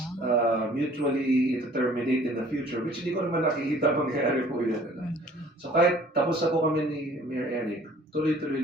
mutually it terminate in the future, which hindi ko naman nakikita mangyayari po yan. So kahit tapos na po kami ni Mayor Eric, tuloy-tuloy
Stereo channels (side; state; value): both; normal; correlation 0.53